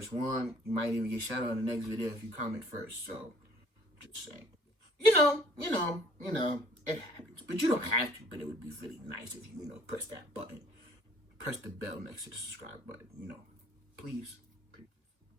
one. You might even get shout out in the next video if you comment first. So, just saying. It happens. But you don't have to. But it would be really nice if you, press that button. Press the bell next to the subscribe button. Please.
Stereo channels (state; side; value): late; left; 2.1 ms